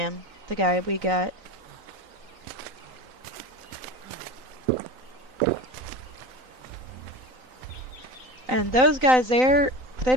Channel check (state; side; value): late; left; 3.9 ms